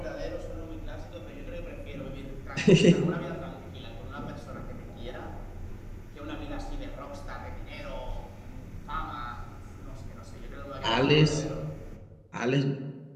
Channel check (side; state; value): both; identical; correlation 1.00